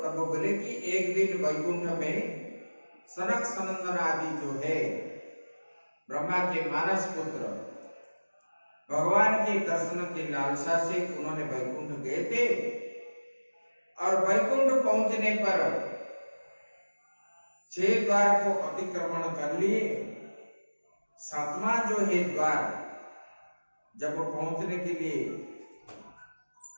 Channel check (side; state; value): both; inverted; correlation -1.00